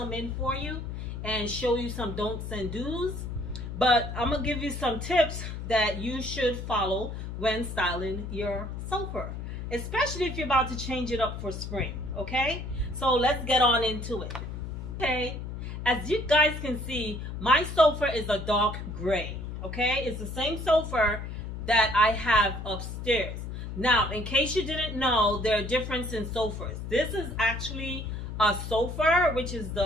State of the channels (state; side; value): noise; left; hum, 7 dB below the sound